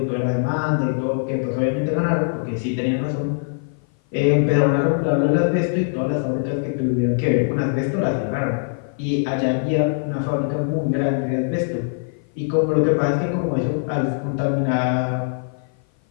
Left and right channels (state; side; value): silent; right; 56 dB below the other